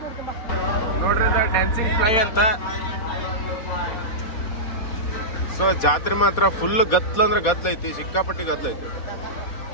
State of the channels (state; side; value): late; right; 4.3 ms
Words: ನೋಡ್ರಿ ಡ್ಯಾನ್ಸಿಂಗ್ ಫ್ಲೈ ಅಂತ. ಸೊ ಜಾತ್ರೆ ಮಾತ್ರ ಫುಲ್ ಗತ್ಲ ಅಂದ್ರೆ ಗದ್ಲೈತಿ, ಸಿಕ್ಕಾಪಟ್ಟಿ ಗದ್ಲೈತಿ.